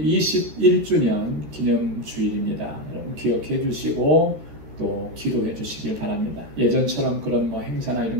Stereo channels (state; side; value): late; left; 13 ms